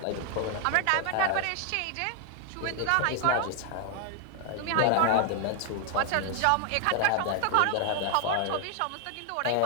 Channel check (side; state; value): both; different; correlation 0.00